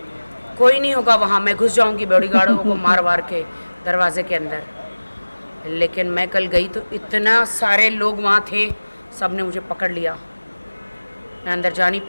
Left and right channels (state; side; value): inverted; both; correlation -1.00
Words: कोई नहीं होगा वहाँ। मैं घुस जाऊंगी बॉडीगार्डों को मार वार के दरवाजे के अंदर। लेकिन मैं कल गई तो इतना सारे लोग वहाँ थे, सब ने मुझे पकड़ लिया, मैं अंदर जा नहीं